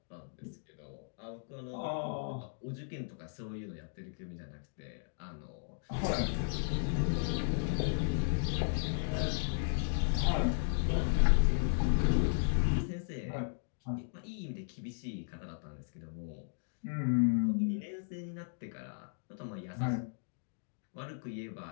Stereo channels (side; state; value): right; silent; digital silence